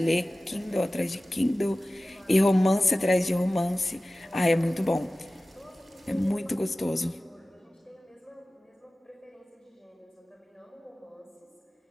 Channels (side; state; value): both; normal; correlation 0.96